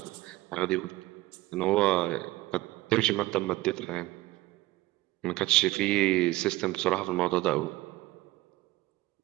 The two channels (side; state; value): left; quieter; 18.4 dB